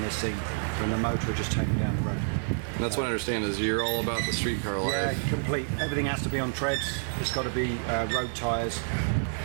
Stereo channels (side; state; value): left; silent; digital silence